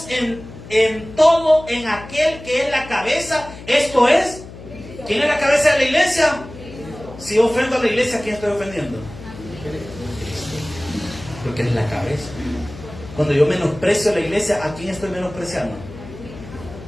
en en todo en aquel que es la cabeza, esto es, ¿quién es la cabeza de la iglesia? Si yo ofendo a la iglesia, ¿a quién estoy ofendiendo? Porque es la cabeza. Cuando yo menosprecio a la iglesia, ¿a quién estoy menospreciando?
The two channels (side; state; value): left; noise; hum, 15 dB below the sound